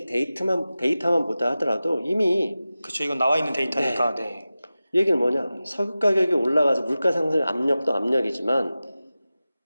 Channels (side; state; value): both; inverted; correlation -0.95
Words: 데이터만 보다 하더라도 이미 그렇죠. 이건 나와 있는 데이터니까. 네. 얘기는 뭐냐? 석유 가격이 올라가서 물가 상승 압력도 압력이지만